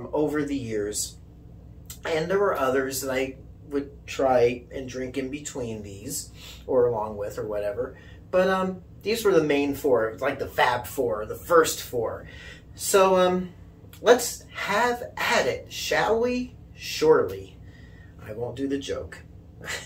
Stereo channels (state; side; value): identical; both; correlation 1.00